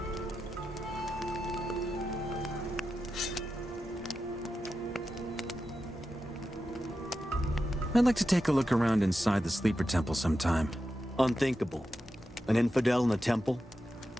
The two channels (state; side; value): normal; both; correlation 0.90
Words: I'd like to take a look around inside the Sleeper Temple sometime. Unthinkable. An infidel in the temple?